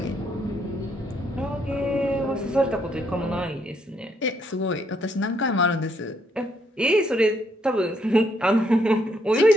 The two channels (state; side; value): normal; both; correlation 0.72